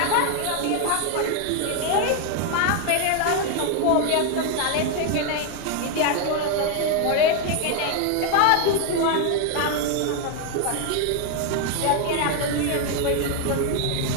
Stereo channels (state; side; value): different; both; correlation 0.01